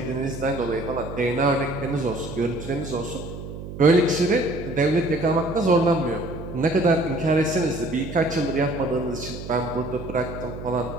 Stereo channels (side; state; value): right; noise; hum, 10 dB below the sound